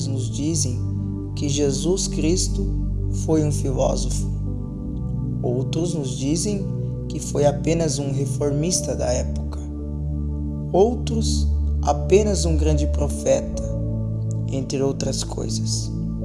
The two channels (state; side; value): identical; both; correlation 1.00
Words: nos dizem que Jesus Cristo foi um filósofo. Outros nos dizem que foi apenas um reformista da época. Outros, apenas um grande profeta, entre outras coisas.